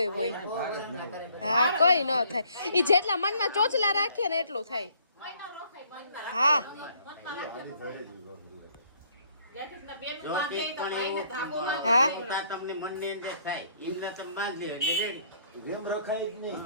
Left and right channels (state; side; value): inverted; both; correlation -0.63